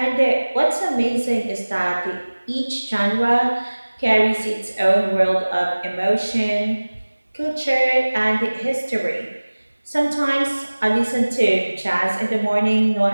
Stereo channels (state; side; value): inverted; both; correlation -1.00